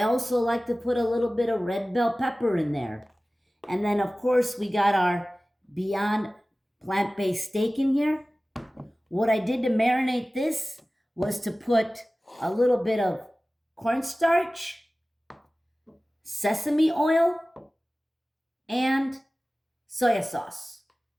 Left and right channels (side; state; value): both; normal; correlation 0.97